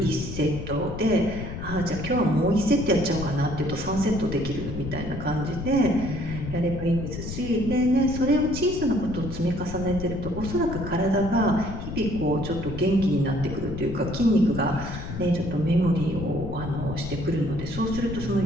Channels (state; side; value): noise; left; rumble, 7 dB below the sound